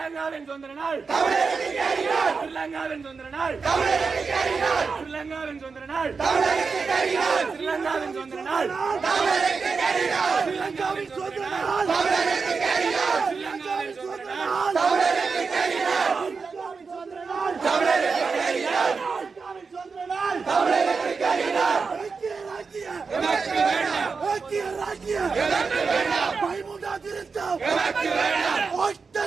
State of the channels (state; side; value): quieter; left; 4.9 dB